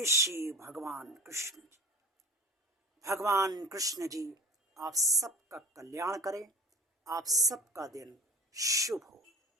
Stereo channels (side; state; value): both; normal; correlation 0.38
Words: श्री भगवान कृष्ण जी। भगवान कृष्ण जी आप सबका कल्याण करें, आप सबका दिन शुभ हो।